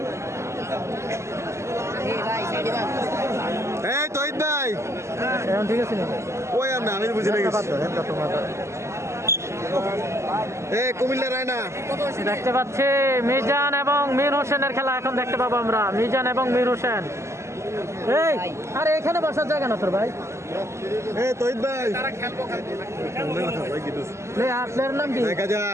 এই তহিদ ভাই ঠিক আছে, ওই আমি বুঝে এই কুমিল্লা রায়না দেখতে পাচ্ছি মিজান এবং মীর হোসেনের খেলা এখন দেখতে পাবো আমরা। মিজান এবং মীর হোসেন, এই আরে এখানে বসার জায়গা না তোর ভাই। এই তহিদ ভাই আপনার নাম কি? দেখা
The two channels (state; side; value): late; left; 0.13 ms